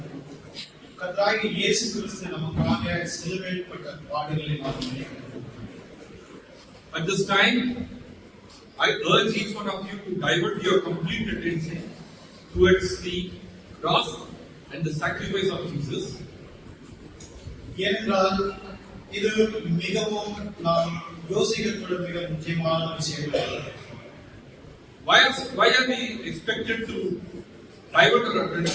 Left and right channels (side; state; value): both; identical; correlation 1.00